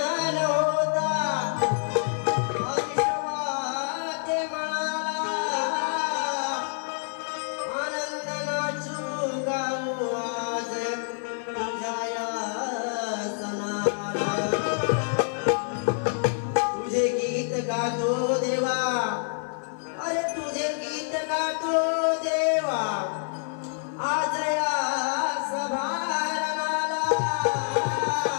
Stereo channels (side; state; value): right; silent; 60 dB below the other